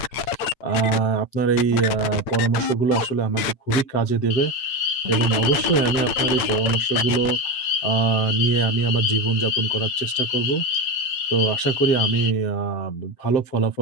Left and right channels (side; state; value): right; late; 8.8 ms